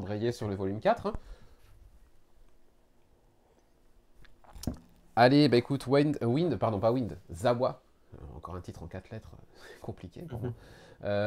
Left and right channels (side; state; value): both; identical; correlation 1.00